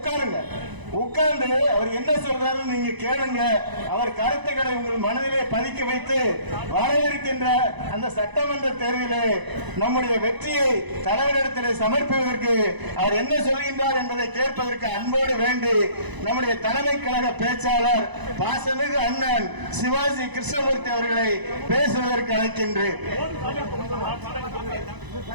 உட்கார்ந்து அவர் என்ன சொல்றாருன்னு நீங்க கேளுங்க. அவர் கருத்துக்களை உங்கள் மனதிலே பதிக்க வைத்து வர இருக்கின்ற அந்த சட்டமன்ற தேர்தலிலே நம்முடைய வெற்றியை தலைவரிடத்திலே சமர்ப்பிப்பதற்கு அவர் என்ன சொல்கின்றார் என்பதை கேட்பதற்கு அன்போடு வேண்டி நம்முடைய தலைமை கழக பேச்சாளர் பாசமிகு அண்ணன் சிவாஜி கிருஷ்ணமூர்த்தி அவர்களை பேசுவதற்கு அழைக்கின்றேன்.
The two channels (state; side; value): late; left; 1.0 ms